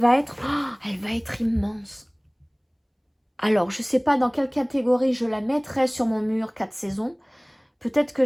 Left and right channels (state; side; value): identical; both; correlation 1.00